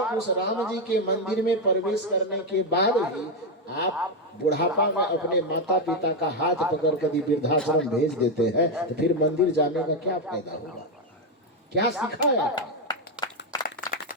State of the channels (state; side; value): normal; both; correlation 0.06